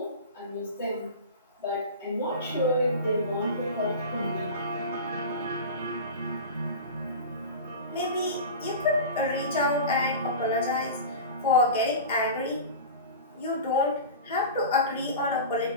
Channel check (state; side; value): inverted; both; correlation -0.30